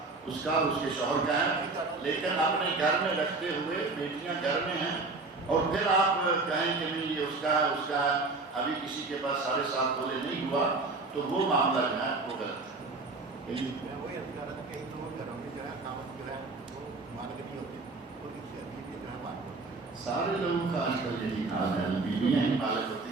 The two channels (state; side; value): quieter; left; 3.6 dB